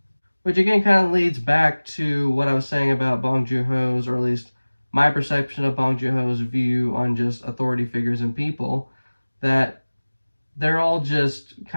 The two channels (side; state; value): both; inverted; correlation -1.00